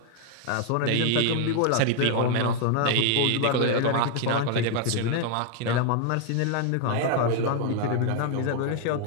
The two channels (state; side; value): different; both; correlation 0.00